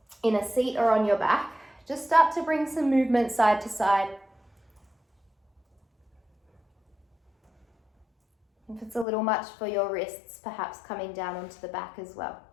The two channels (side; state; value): right; drops out; at 9.1 s